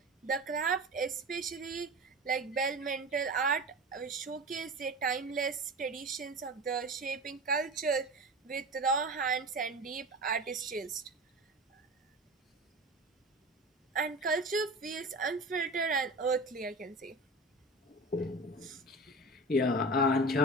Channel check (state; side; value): normal; both; correlation 0.32